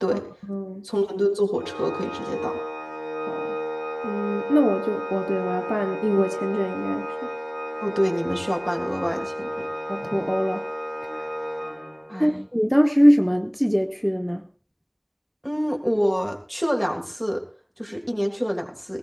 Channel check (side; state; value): both; identical; correlation 1.00